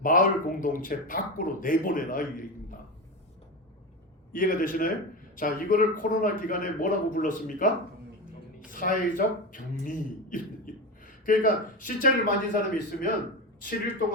마을 공동체 밖으로 내보내라 이 얘기입니다. 이해가 되시나요? 자, 이거를 코로나 기간에 뭐라고 불렀습니까? 사회적 격리. 그러니까 시체를 만진 사람이 있으면 7일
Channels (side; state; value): both; normal; correlation 0.20